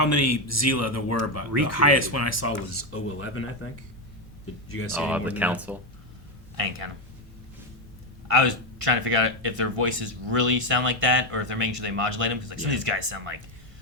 many Zila there were, but the Recreated. highest one I saw was 011, I think. Did you guys see any Oh, more the than council. I ain't count 'em. I was trying to figure out if their voices really sound like that, or if they're making sure they modulate them. Because like some of these guys sound like,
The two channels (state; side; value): normal; both; correlation 0.08